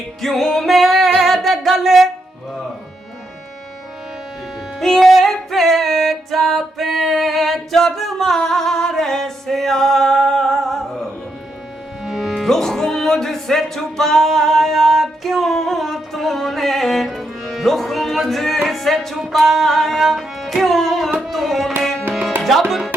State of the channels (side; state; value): both; normal; correlation 0.81